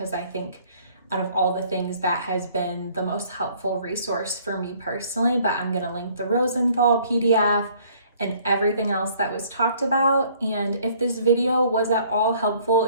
I think out of all the things, that has been the most helpful resource for me personally. But I'm gonna link the Rosenthal PDF and everything else that was talked about. And if this video was at all helpful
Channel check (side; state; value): both; inverted; correlation -0.59